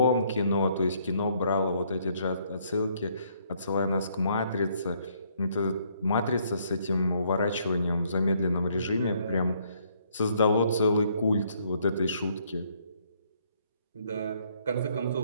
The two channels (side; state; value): both; inverted; correlation -0.68